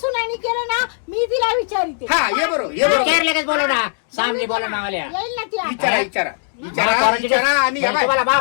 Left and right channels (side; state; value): right; silent; digital silence